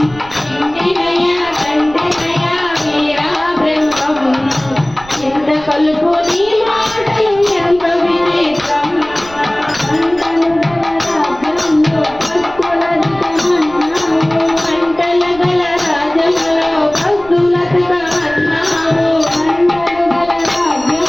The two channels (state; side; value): noise; right; rumble, 20 dB below the sound